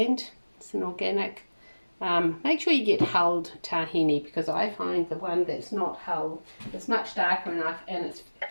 It's an organic. Make sure you get hulled tahini, because I find the one that's not hulled is much darker enough and it's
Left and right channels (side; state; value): both; inverted; correlation -1.00